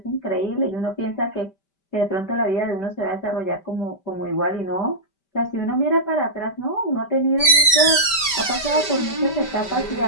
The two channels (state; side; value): late; right; 5.1 ms